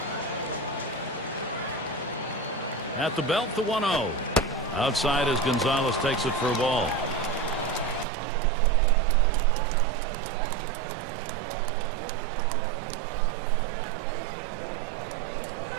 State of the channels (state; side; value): drops out; left; at 8.1 s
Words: At the belt, the 1-0. Outside as Gonzalez takes it for a ball.